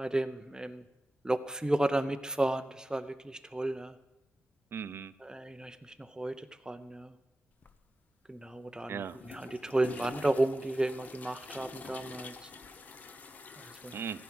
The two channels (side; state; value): both; normal; correlation 0.94